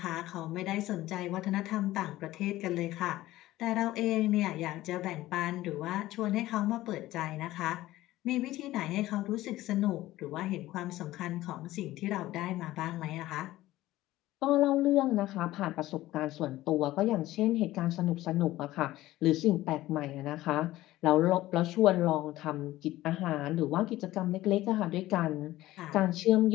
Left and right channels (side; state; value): right; quieter; 16.2 dB